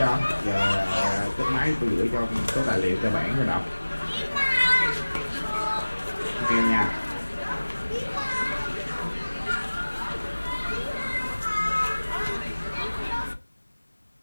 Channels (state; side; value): inverted; both; correlation -1.00